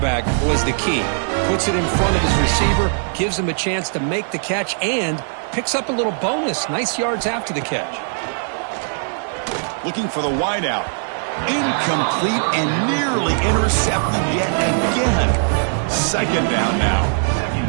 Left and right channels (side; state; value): left; silent; digital silence